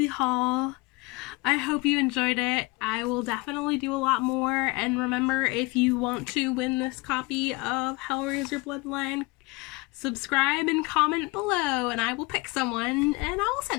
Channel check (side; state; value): right; quieter; 25.0 dB